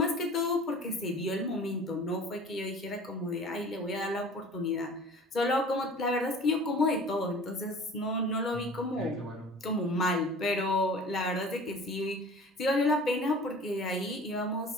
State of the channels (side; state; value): both; normal; correlation 0.44